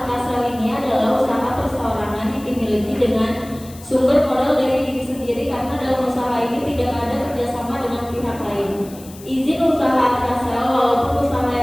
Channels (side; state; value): left; noise; hiss, 20 dB below the sound